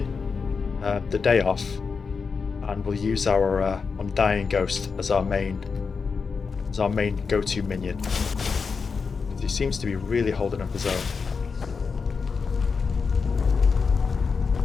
the day off, and we'll use our Undying Ghost as our main go-to minion. He seems to be really holding up his own.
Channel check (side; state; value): right; quieter; 5.2 dB